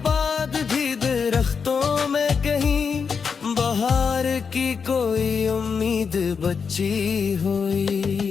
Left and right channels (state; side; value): quieter; right; 5.9 dB